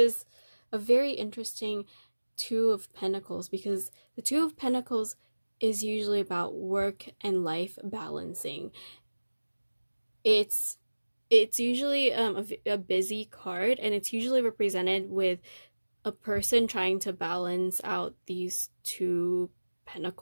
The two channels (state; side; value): inverted; both; correlation -1.00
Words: a very interesting Two of Pentacles because the Two of Pentacles is usually about work and life balancing. It's usually a busy card, and it's usually represented with a person trying to balance out these two